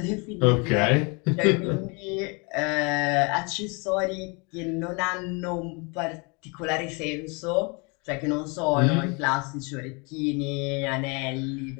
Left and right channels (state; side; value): quieter; right; 31.2 dB